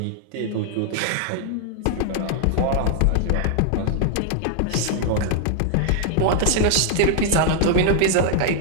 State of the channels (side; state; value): both; different; correlation 0.00